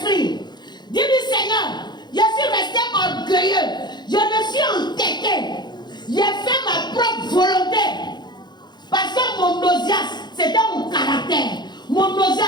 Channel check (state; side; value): late; right; 0.21 ms